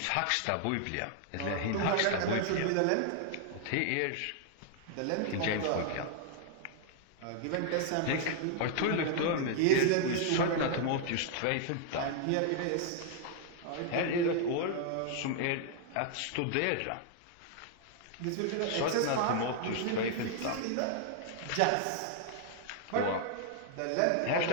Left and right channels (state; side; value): different; both; correlation -0.01